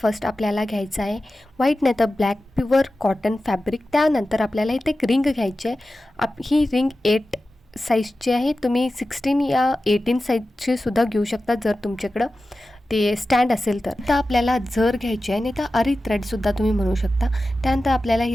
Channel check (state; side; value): normal; both; correlation 0.94